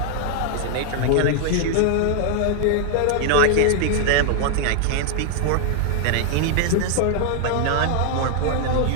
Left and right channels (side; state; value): both; different; correlation 0.00